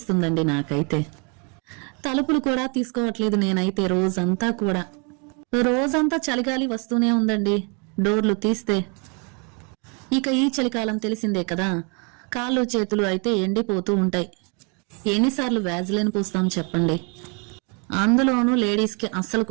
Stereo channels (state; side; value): quieter; left; 34.4 dB